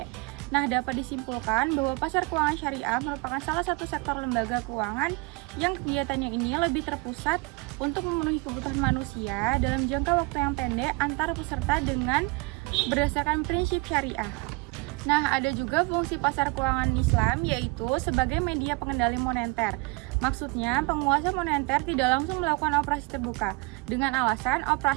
Nah, dapat disimpulkan bahwa pasar keuangan syariah merupakan salah satu sektor lembaga keuangan yang kegiatannya ini lebih terpusat untuk memenuhi kebutuhan manusia dalam jangka waktu yang pendek antar peserta dengan berdasarkan prinsip syariah. Nah, ada juga fungsi pasar keuangan Islam yaitu sebagai media pengendali moneter. Maksudnya, penguasa moneter tidak langsung melakukan operasi terbuka dengan alasan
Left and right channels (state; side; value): quieter; left; 27.0 dB